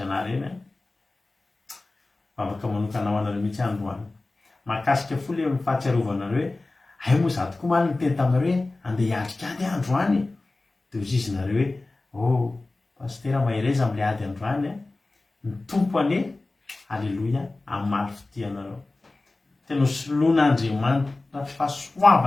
anareo eny afaka manokanao anareo mihitsy androany mahakasika fo le fahatsiarovanareo hoe ay moa za tokoa maly nyteny taminareo hoe andeha hiatrikady androany dia ozy izy nareo hoe pastera mahireza amin'le ady androany ny tompo ane. Halleloia. Amin'ny maly fitianareo tena soloan'Andriamanitra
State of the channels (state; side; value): quieter; right; 3.2 dB